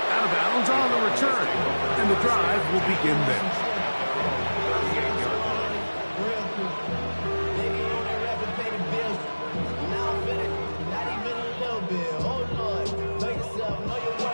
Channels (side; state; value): both; inverted; correlation -1.00